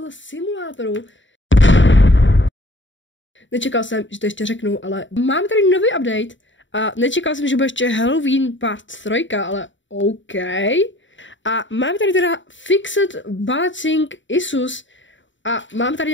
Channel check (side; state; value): right; late; 0.55 ms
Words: Simulatoru. Nečekal jsem, že to ještě řeknu, ale mám tady nový update a nečekal jsem, že bude ještě Halloween part 3, ale OK. A mám tady teda Fixed Balancing Issues a mám tady